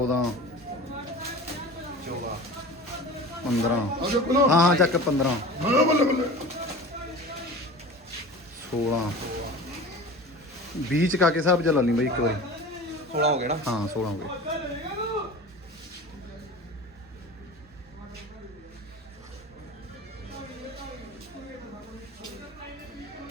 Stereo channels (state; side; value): normal; both; correlation 0.36